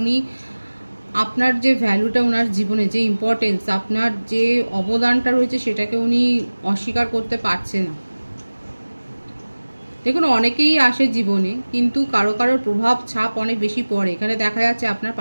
উনি আপনার যে ভ্যালুটা, ওনার জীবনে যে ইম্পর্টেন্স, আপনার যে অবদানটা রয়েছে সেটাকে উনি অস্বীকার করতে পারছে না। দেখুন, অনেকেই আসে জীবনে, কিন্তু কারো কারোর প্রভাব ছাপ অনেক বেশি পড়ে। এখানে দেখা যাচ্ছে আপনার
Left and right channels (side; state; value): both; inverted; correlation -1.00